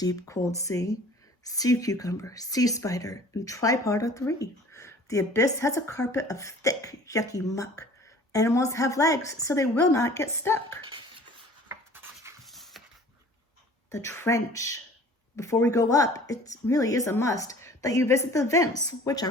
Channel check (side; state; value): both; normal; correlation 0.48